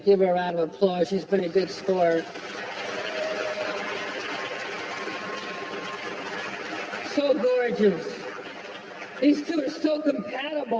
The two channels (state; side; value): identical; both; correlation 1.00